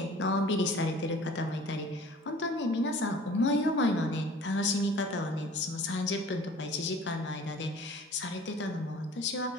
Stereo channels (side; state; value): both; normal; correlation 0.47